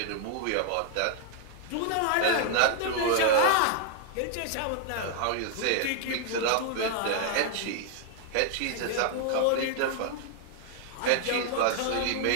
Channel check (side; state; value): both; different; correlation 0.00